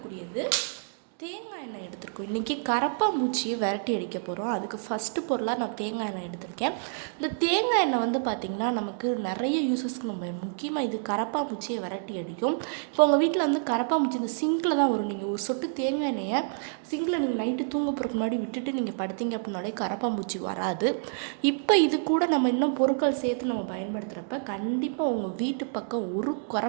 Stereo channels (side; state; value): left; silent; digital silence